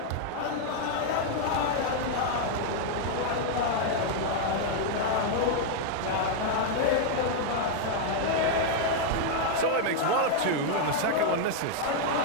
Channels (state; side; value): different; both; correlation 0.00